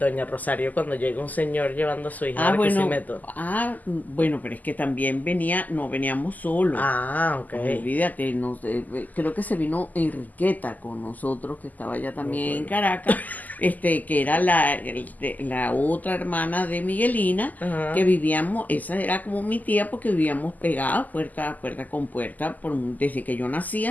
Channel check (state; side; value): late; right; 0.081 ms